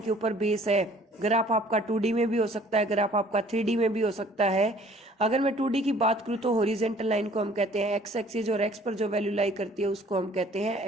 ऊपर बेस है। ग्राफ आपका 2D में भी हो सकता है, ग्राफ आपका 3D में भी हो सकता है। अगर मैं 2D की बात करूं तो हॉरिजॉन्टल लाइन को हम कहते हैं एक्स एक्सिस, और एक्स पर जो वैल्यू लाई करती है उसको हम कहते हैं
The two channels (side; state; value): both; normal; correlation 0.54